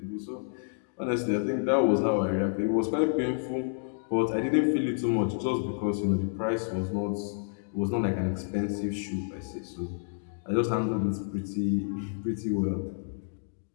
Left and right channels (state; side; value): silent; right; digital silence